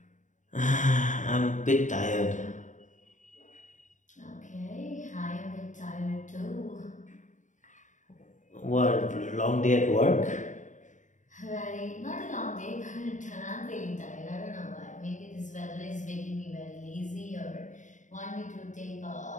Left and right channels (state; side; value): late; right; 0.36 ms